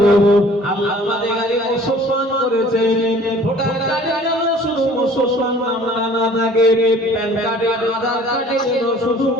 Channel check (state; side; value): normal; both; correlation 0.51